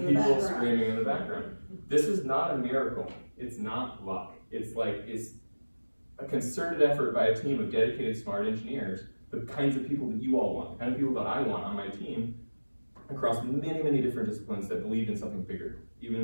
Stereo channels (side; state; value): both; inverted; correlation -1.00